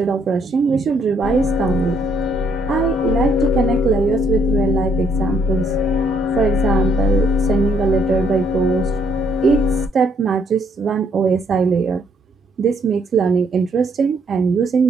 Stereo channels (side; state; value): both; normal; correlation 0.69